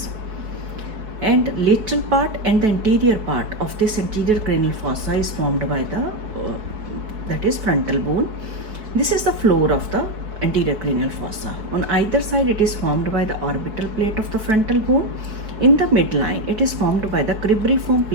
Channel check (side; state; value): left; late; 4.7 ms